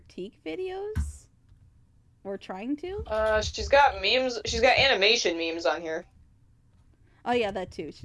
videos. Or trying to. She's got memes. She's got animation memes on here. Oh yeah, that too.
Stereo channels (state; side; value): identical; both; correlation 1.00